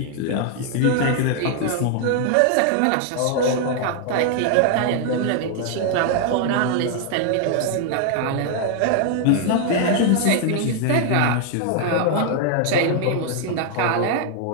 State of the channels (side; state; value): both; different; correlation 0.00